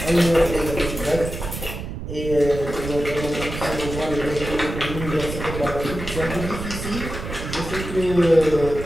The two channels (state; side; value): noise; right; rumble, 7 dB below the sound